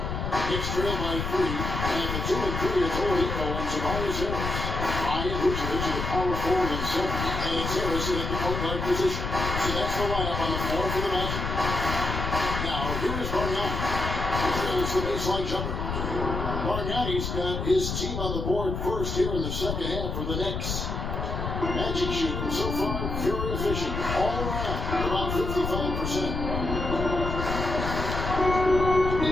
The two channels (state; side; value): noise; left; rumble, 3 dB below the sound